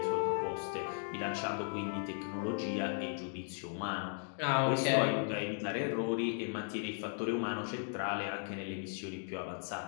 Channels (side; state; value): right; silent; 53 dB below the other